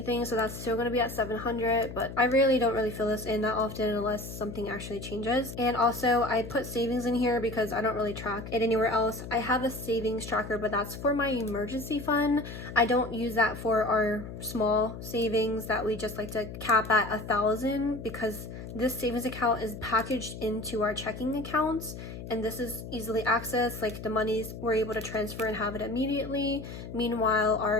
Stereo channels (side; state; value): left; noise; hum, 10 dB below the sound